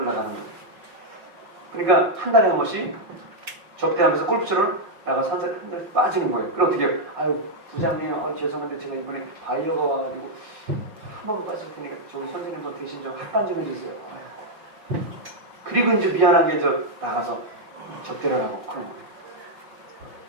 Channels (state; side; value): late; left; 5.3 ms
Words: 나가는 거예요. 그러니까 한 달에 한 번씩 접대하면서 골프처럼 나가서 한 달에 빠지는 거예요. 그럼 어떻게 해요? 아유 부장님 죄송한데 제가 이번에 바이어가 와가지고 한 번 빠질 테니까 저기 선생님도 대신 좀 합반 좀 해주세요. 그리고 이제 미안하게 나가서 접대를 하고 그런 거예요.